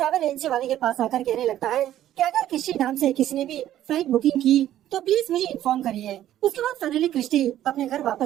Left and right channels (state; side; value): quieter; left; 12.4 dB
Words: एजेंसी वाले के पास आकर कहने लगता है कि अगर क्रिस्टी नाम से किसी ने भी फ्लाइट बुकिंग की तो प्लीज मुझे इन्फॉर्म करिए। उसके बाद फाइनली क्रिस्टी अपने घर